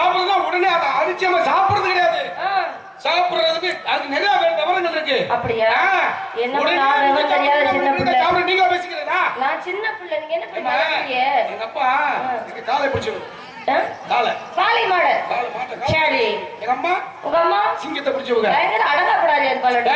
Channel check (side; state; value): both; identical; correlation 1.00